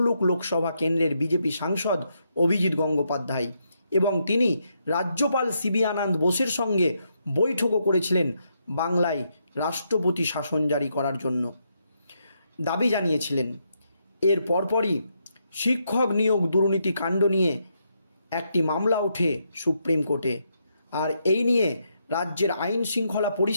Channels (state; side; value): inverted; both; correlation -0.79